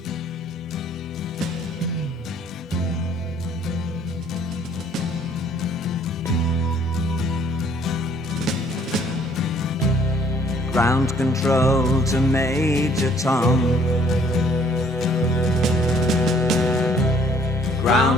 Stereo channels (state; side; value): normal; both; correlation 0.61